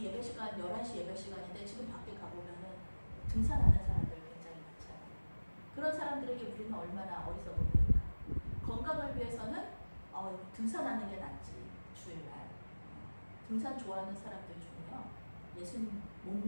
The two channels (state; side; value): inverted; both; correlation -1.00